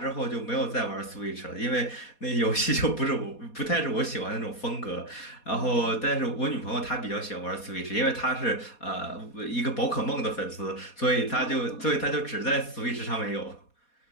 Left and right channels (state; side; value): late; right; 4.2 ms